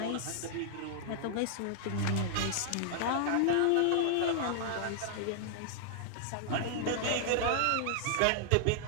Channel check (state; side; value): different; both; correlation -0.01